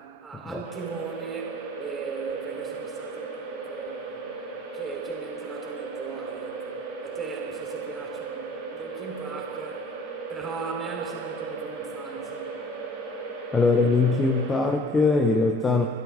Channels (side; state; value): both; normal; correlation 0.52